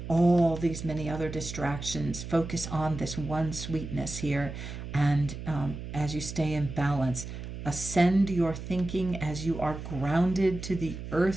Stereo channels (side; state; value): right; noise; hum, 9 dB below the sound